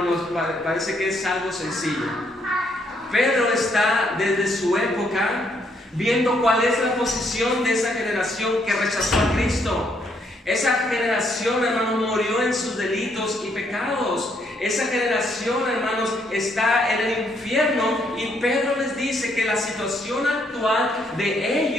parece que es algo sencillo. Pedro está desde su época viendo cuál es la posición de esa generación que rechazó a Cristo. Esa generación, hermanos, murió en sus delitos y pecados. Esa generación, hermanos, está en el infierno, y Pedro les dice que la situación actual de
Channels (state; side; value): normal; both; correlation 0.72